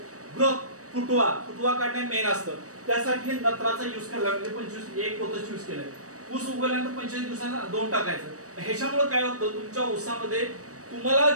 ग्रोथ, फुटवा काढणे मेन असतं. त्यासाठी नत्राचा युज करायला, म्हणजे 25 एक पोतच युज केलंय. ऊस उगवल्यानंतर 25 दिवसांना 2 टाकायचं. ह्याच्यामुळे काय होतं, तुमच्या ऊसामध्ये तुम्हाला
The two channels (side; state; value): left; late; 0.66 ms